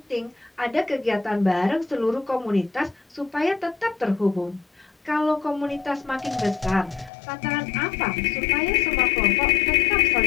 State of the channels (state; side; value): drops out; right; at 7.1 s